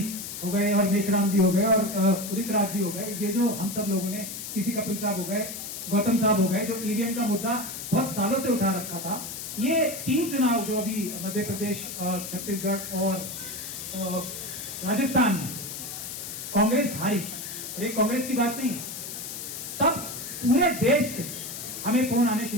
हो गए और मेशराम जी हो गए और उदित राज जी हो गए, ये जो हम सब लोगों ने, किसी कपिल साहब हो गए, गौतम साहब हो गए, जो ईवीएम का मुद्दा बहुत सालों से उठा रखा था। ये 3 चुनाव जो अभी मध्य प्रदेश, छत्तीसगढ़ और राजस्थान में कांग्रेस हारी, और ये कांग्रेस की बात नहीं है, तब पूरे देश से हमें फोन आने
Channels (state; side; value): noise; left; hiss, 8 dB below the sound